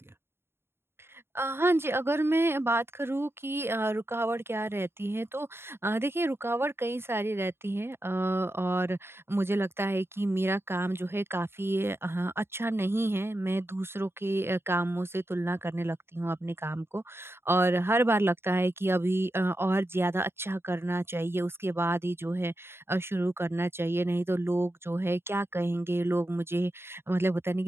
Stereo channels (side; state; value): left; late; 0.12 ms